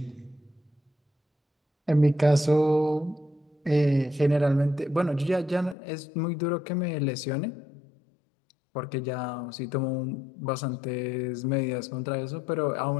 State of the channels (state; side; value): drops out; right; at 5.8 s